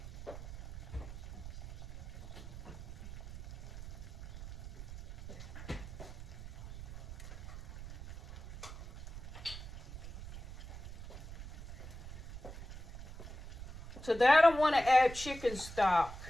To that, I want to add chicken stock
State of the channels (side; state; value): right; noise; rumble, 10 dB below the sound